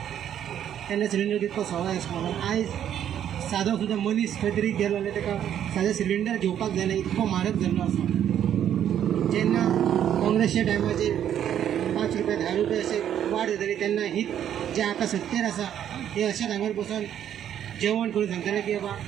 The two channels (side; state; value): left; quieter; 10.1 dB